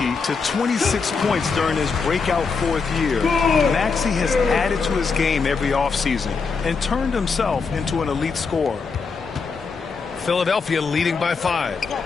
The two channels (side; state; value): right; quieter; 5.0 dB